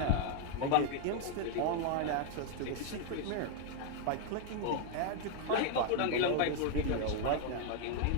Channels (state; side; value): different; both; correlation 0.00